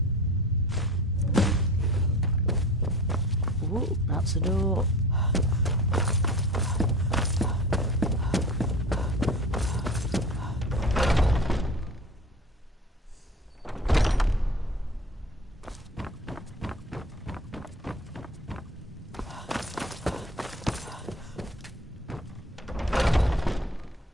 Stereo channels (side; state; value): both; normal; correlation 0.38